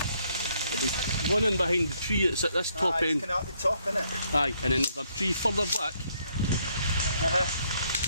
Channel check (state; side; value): inverted; both; correlation -0.71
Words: There'll be one in behind the tree, it's at this top It's end. kind of at the top, isn't it? Aye, and then there's a tree further back.